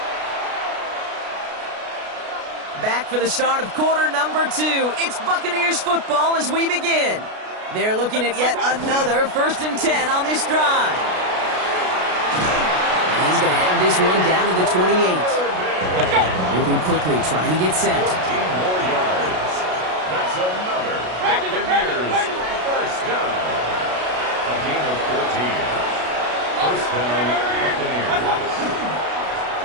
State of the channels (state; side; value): late; left; 33 ms